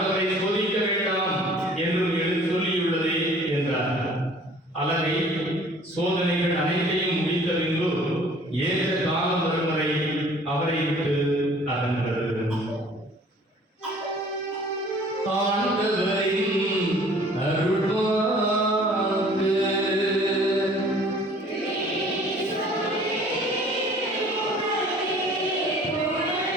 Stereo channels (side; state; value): both; normal; correlation 0.52